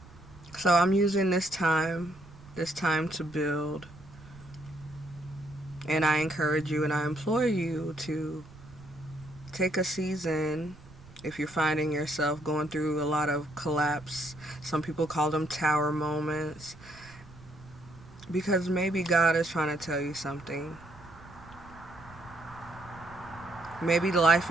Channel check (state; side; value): noise; right; rumble, 21 dB below the sound